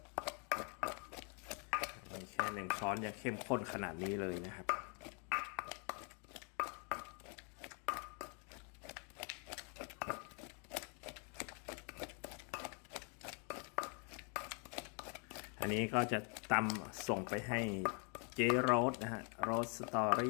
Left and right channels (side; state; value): right; quieter; 37.6 dB